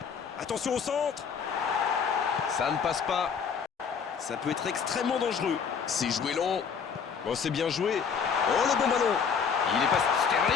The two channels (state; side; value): quieter; right; 6.5 dB